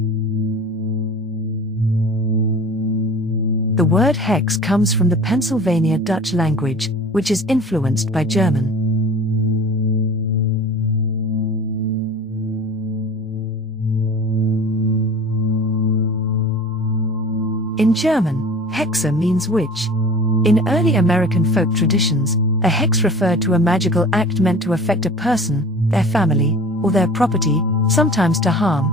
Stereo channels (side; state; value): both; normal; correlation 0.41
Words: The word hex comes from the Pennsylvania Dutch language, which is influenced by German. In German, hexe means witch. In early American folk traditions, a hex referred to a magical act meant to affect a person, their family, or their property, sometimes to